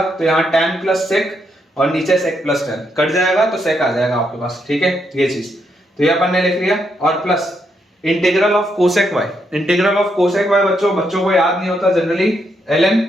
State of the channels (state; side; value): normal; both; correlation 0.78